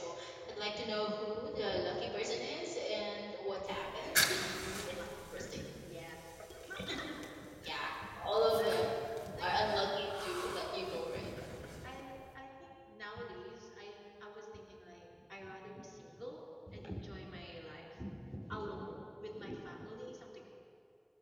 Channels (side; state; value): both; identical; correlation 1.00